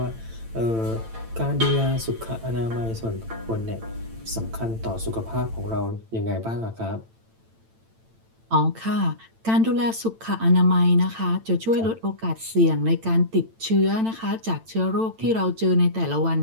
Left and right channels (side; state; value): left; late; 8.9 ms